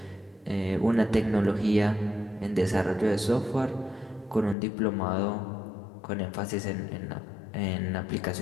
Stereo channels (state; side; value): drops out; right; at 4.5 s